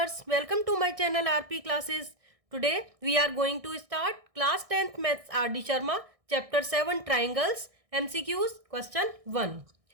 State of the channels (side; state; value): left; late; 1.6 ms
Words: welcome to my channel RP Classes. Today we are going to start class 10th Maths RD Sharma chapter 7 Triangles MCQs question 1.